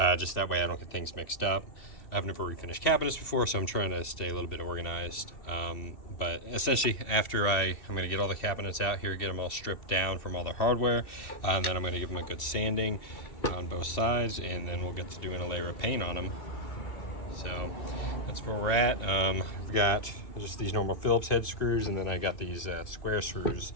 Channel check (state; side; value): late; right; 2.7 ms